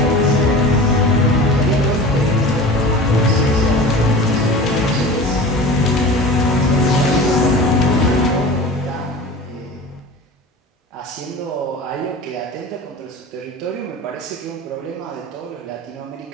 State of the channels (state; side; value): normal; both; correlation 0.36